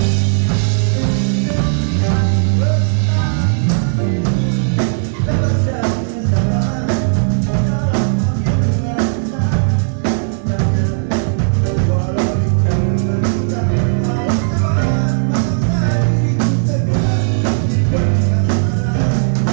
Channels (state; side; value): silent; left; digital silence